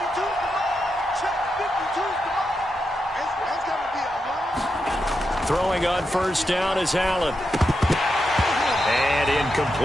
Throwing on 1st down is Allen. And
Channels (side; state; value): both; normal; correlation 0.86